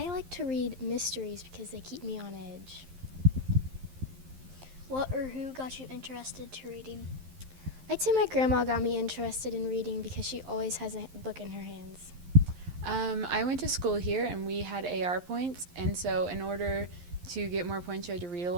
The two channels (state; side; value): late; left; 11 ms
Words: like to read mysteries because they keep me on edge. What or who got you interested to reading? I'd say my grandma got me interested in reading because she always has a book in her hands. I went to school here and we had AR points, and so in order to get more points you had to read a